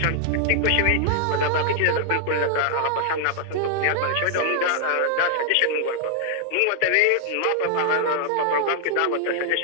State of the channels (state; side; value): different; both; correlation 0.00